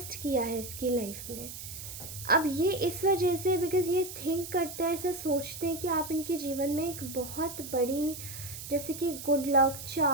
किया है इसकी लाइफ में। अब ये इस वजह से, बिकॉज़ ये थिंक करते हैं, ऐसा सोचते हैं कि आप इनके जीवन में एक बहुत बड़ी जैसे कि गुड लक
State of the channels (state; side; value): noise; right; hiss, 10 dB below the sound